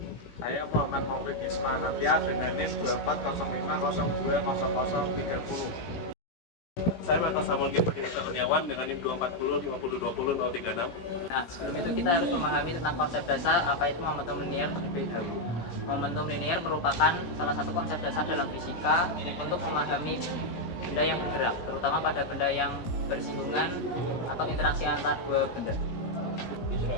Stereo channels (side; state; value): right; late; 17 ms